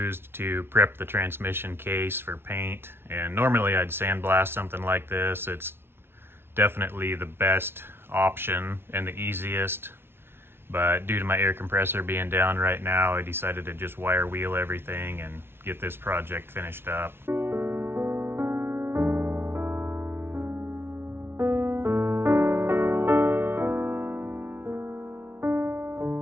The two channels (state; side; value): late; left; 0.11 ms